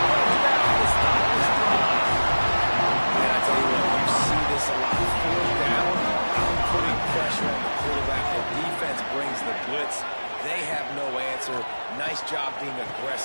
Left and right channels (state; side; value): inverted; both; correlation -1.00